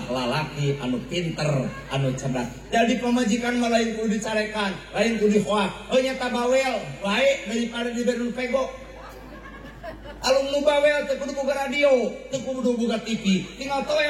lalaki anu pinter, anu cerdas. Jadi pamajikan mah lain kudu dicarekan, lain kudu dihoak. Nyata bawel, baik daripada diberi pego. Alum nu bawel teu kudu boga radio, teu kudu boga TV. Tinggal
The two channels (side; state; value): both; identical; correlation 1.00